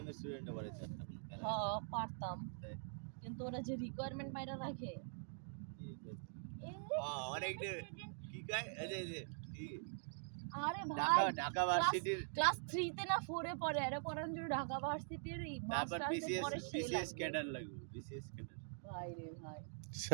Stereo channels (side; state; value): left; silent; digital silence